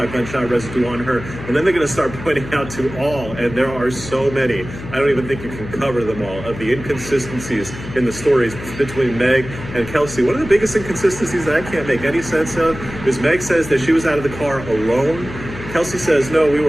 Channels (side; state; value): left; noise; hum, 12 dB below the sound